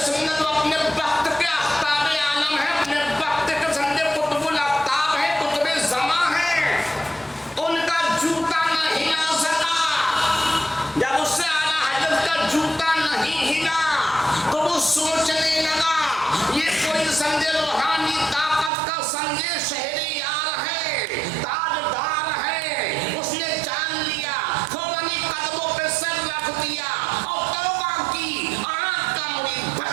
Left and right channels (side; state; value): left; drops out; at 18.7 s